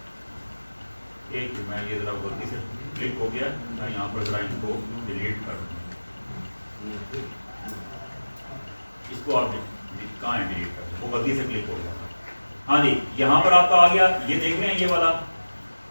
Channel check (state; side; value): inverted; both; correlation -1.00